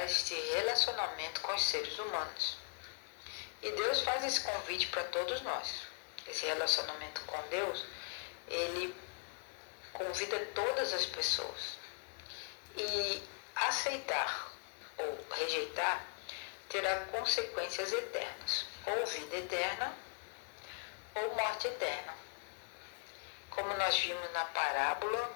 este relacionamento com os seres humanos. E Deus faz esse convite para todos nós. Esse relacionamento com Deus, ele convida todas as pessoas. E aceitar ou rejeitar terá consequências eternas, ou vida eterna, ou morte eterna, como nós vimos na parábola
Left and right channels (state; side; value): quieter; right; 37.9 dB